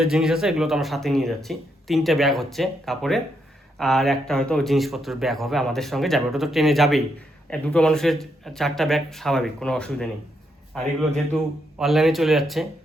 জিনিস আছে এগুলো তো আমরা সাথে নিয়ে যাচ্ছি। 3টে ব্যাগ হচ্ছে কাপড়ের, আর একটা হয়তো জিনিসপত্রের ব্যাগ হবে আমাদের সঙ্গে যাবে, ওটা তো ট্রেনে যাবেই। দুটো মানুষের 4টা ব্যাগ স্বাভাবিক, কোনো অসুবিধা নেই। আর এগুলো যেহেতু অনলাইনে চলে যাচ্ছে,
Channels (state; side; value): normal; both; correlation 0.78